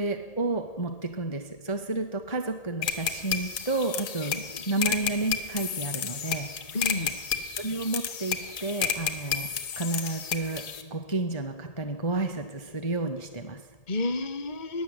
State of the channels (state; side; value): late; right; 1.8 ms